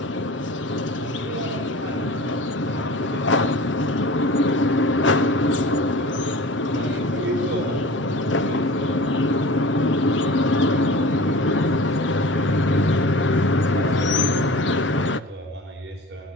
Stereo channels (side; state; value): both; normal; correlation 0.38